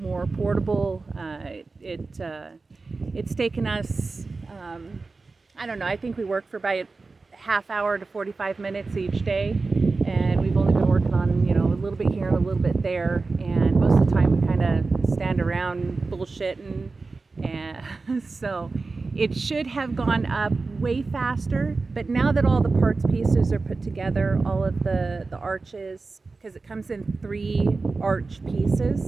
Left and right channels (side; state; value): left; quieter; 3.9 dB